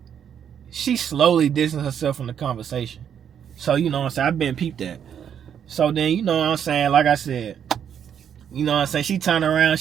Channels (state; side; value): quieter; left; 8.6 dB